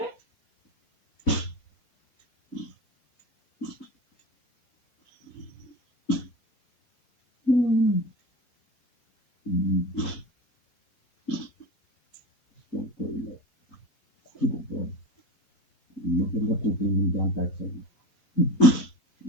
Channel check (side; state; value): right; late; 4.1 ms